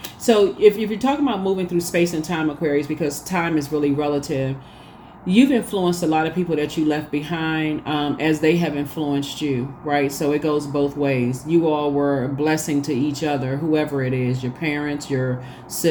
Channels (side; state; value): both; identical; correlation 1.00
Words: So if you're talking about moving through space and time, Aquarius, because time is really relative, you've influenced a lot of people that you left behind as they have influenced you, right? So it goes both ways. You all were a blessing to each other, whoever it is, your parents, your